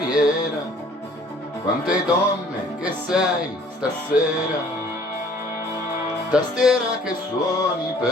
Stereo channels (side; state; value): both; normal; correlation 0.56